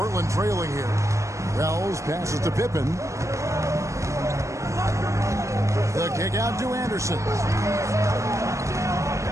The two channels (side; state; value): left; late; 0.15 ms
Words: trailing here. Wells passes to Pippen. The kick out to Anderson.